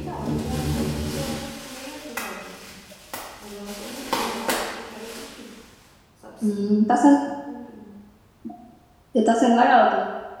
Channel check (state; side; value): identical; both; correlation 1.00